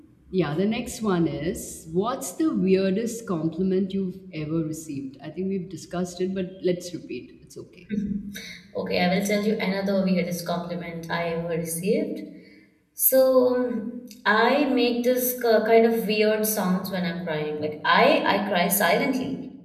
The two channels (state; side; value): identical; both; correlation 1.00